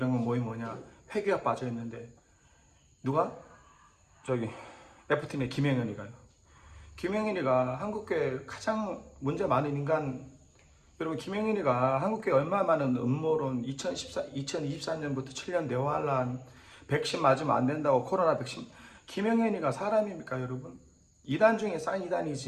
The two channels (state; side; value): identical; both; correlation 1.00